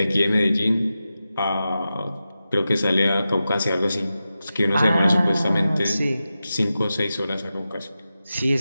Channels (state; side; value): inverted; both; correlation -0.92